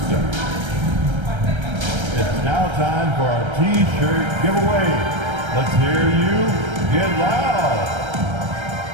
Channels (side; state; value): left; late; 1.3 ms